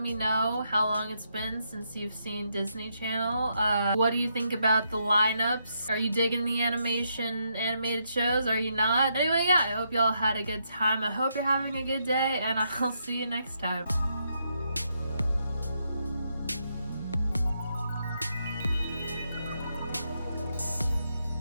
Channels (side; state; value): both; inverted; correlation -0.78